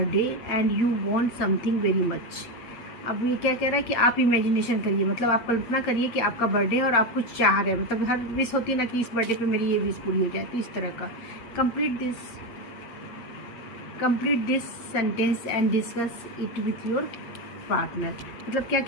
and you want something very much. अब ये क्या कह रहा है कि आप imagination करिए, मतलब आप कल्पना करिए कि आपका बर्थडे है और आप कुछ चाह रहे हैं, मतलब हर विश होती है ना कि इस बर्थडे पे मेरी ये विश पूरी हो जाए, तो इस तरह का complete this sentence and discuss it with your partner. मतलब क्या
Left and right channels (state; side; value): late; right; 8.7 ms